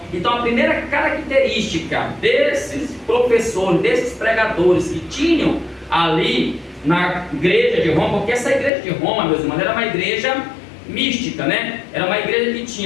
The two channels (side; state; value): right; drops out; at 8.7 s